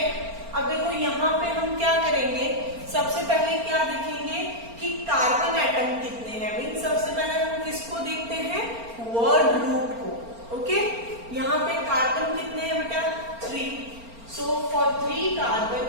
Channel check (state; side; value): late; left; 4.3 ms